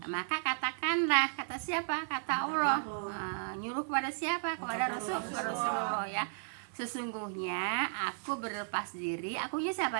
Maka katakanlah, kata siapa? Kata Allah. Nyuruh kepada siapa? Kepada Rasulullah ya. Sesungguhnya aku berlepas diri. Akunya siapa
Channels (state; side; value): silent; left; 55 dB below the other